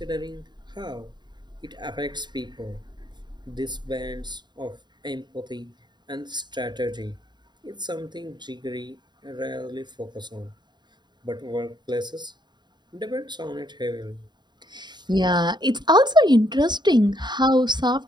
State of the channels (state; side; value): late; left; 0.21 ms